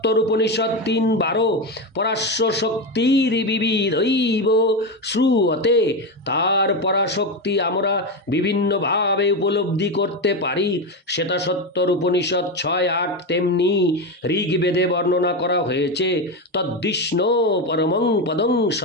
উপনিষদ 3:12 পরাশ্ব শক্তির বিবিধৈব শ্রুয়তে। তার পরাশক্তি আমরা বিভিন্নভাবে উপলব্ধি করতে পারি। শ্বেতা সত্তর উপনিষদ 6:8 তেমনি ঋগ্বেদে বর্ণনা করা হয়েছে। তদ্বিষ্ণু পরমং পদং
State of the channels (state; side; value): normal; both; correlation 0.14